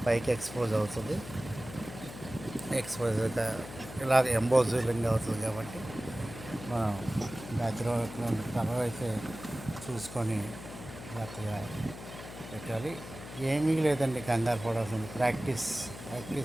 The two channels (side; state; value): left; noise; hum, 13 dB below the sound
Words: పైకి ఎక్స్పోజ్ అవుతుంది. ఎక్స్పోజ్ ఇలా ఎంబోజింగ్ అవుతుంది కాబట్టి మనం బ్యాక్గ్రౌండ్ కలర్ అయితే చూసుకొని జాగ్రత్తగా పెట్టాలి. ఏమీ లేదండి, కంగారు పడాల్సింది ప్రాక్టీస్.